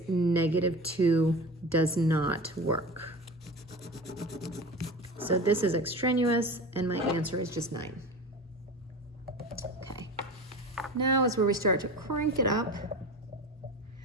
negative 2. Does not work. So this is extraneous, and my answer is just 9. Okay. Now is where we start to crank it up.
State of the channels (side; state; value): both; normal; correlation 0.32